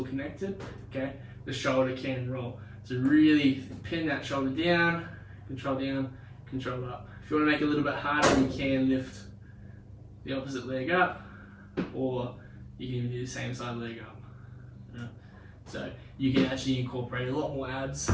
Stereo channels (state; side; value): identical; both; correlation 1.00